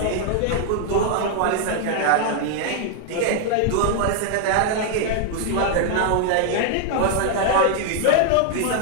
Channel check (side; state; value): both; different; correlation 0.00